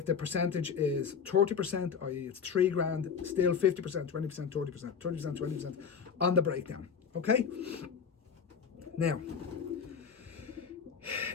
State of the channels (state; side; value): quieter; right; 6.5 dB